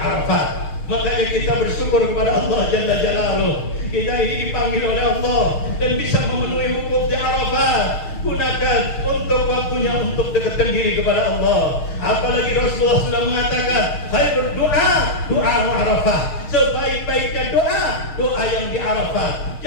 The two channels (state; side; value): late; right; 6.5 ms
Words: Makanya kita bersyukur kepada Allah Jalla Jalaluh. Kita ini dipanggil oleh Allah dan bisa memenuhi wukuf di Arafah. Gunakan untuk waktunya untuk dekatkan diri kepada Allah. Apalagi Rasulullah sudah mengatakan, khairul doa Arafah. Sebaik-baiknya doa yang di Arafah.